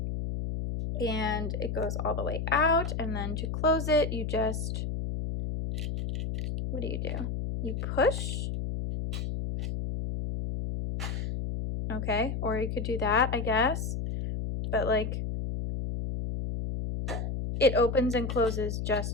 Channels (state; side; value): noise; left; hum, 3 dB below the sound